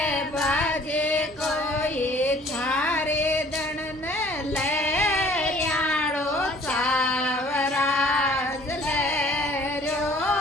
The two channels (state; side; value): normal; both; correlation 0.54